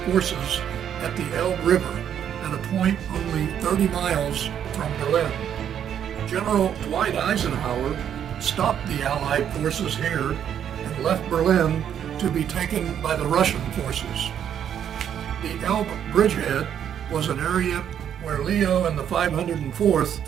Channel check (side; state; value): left; quieter; 9.2 dB